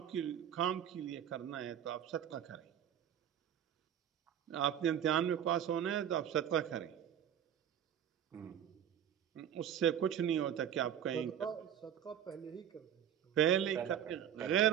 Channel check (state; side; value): quieter; left; 9.8 dB